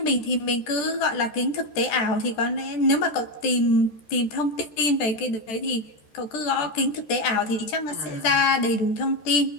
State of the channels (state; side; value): late; right; 13 ms